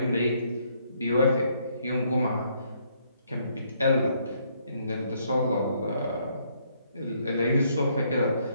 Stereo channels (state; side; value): inverted; both; correlation -0.70